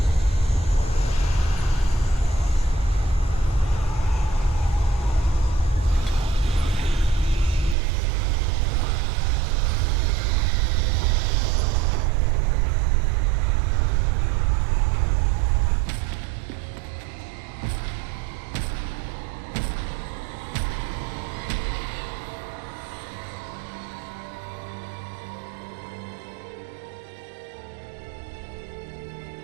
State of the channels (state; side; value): drops out; left; at 7.8 s